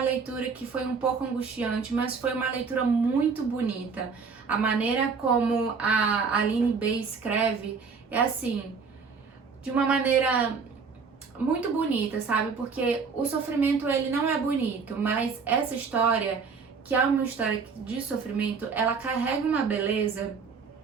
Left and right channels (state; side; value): quieter; left; 5.3 dB